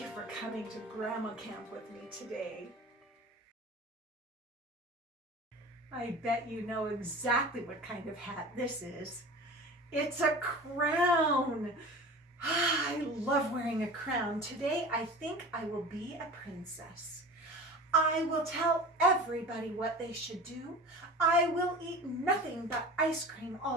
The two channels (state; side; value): normal; both; correlation 0.36